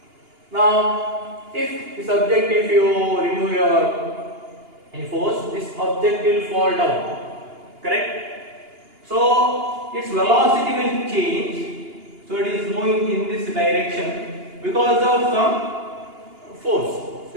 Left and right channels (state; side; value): late; left; 2.8 ms